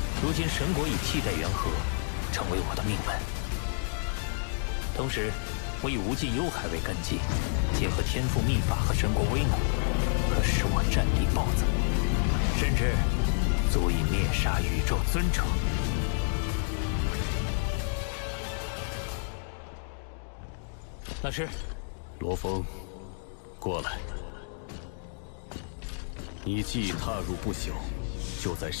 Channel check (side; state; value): right; silent; digital silence